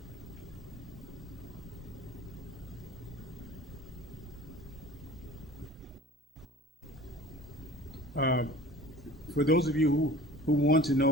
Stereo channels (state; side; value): normal; both; correlation 0.43